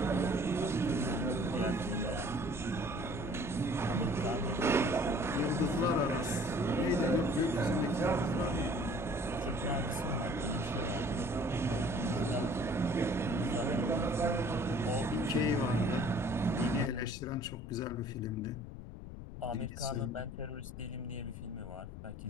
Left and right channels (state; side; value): noise; left; rumble, 10 dB below the sound